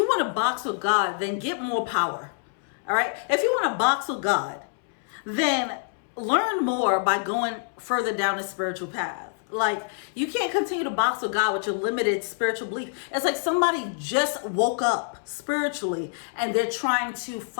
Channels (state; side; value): silent; right; 60 dB below the other